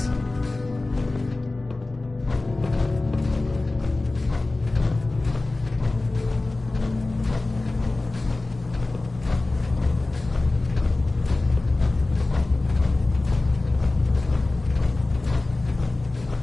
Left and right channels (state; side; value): quieter; right; 3.1 dB